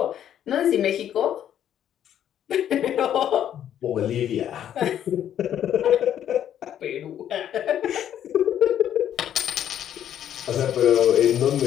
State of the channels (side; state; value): right; quieter; 10.3 dB